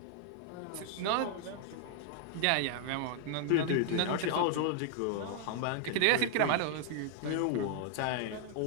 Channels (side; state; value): both; different; correlation 0.00